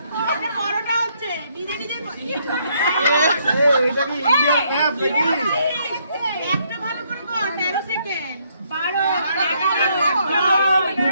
বড়টা হচ্ছে নিজে নিজে এটা কি ইন্ডিয়ান ম্যাপ নাকি একটা ভালো করে কর 13 সেকেন্ড 12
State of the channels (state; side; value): inverted; both; correlation -0.70